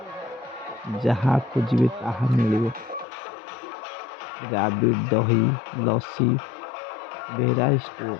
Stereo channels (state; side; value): drops out; right; at 3.1 s